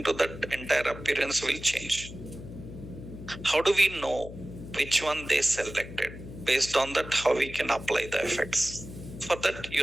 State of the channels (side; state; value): left; noise; hum, 12 dB below the sound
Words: to that entire appearance will change. How do we know which one they selected? Based on that, how we can apply the effects. For that,